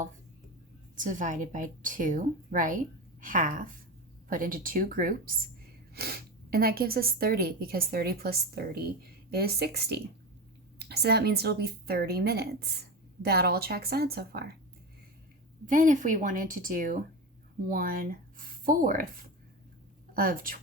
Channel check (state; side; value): normal; both; correlation 0.22